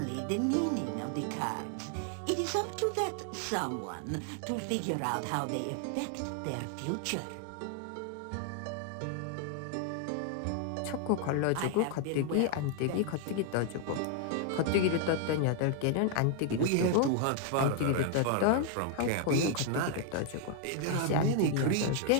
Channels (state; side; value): different; both; correlation 0.00